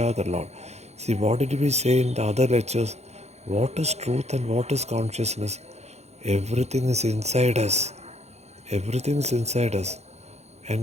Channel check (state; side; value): late; left; 0.32 ms